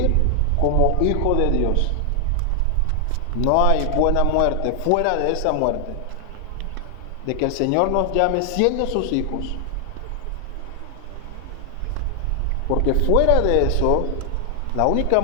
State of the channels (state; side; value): different; both; correlation 0.00